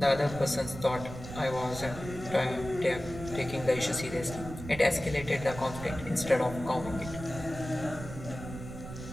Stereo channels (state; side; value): noise; right; rumble, 11 dB below the sound